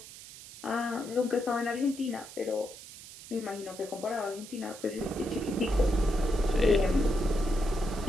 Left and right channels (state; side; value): noise; right; hiss, 16 dB below the sound